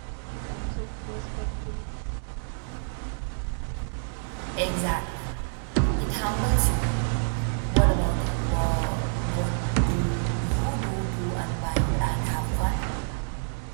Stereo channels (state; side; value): silent; left; digital silence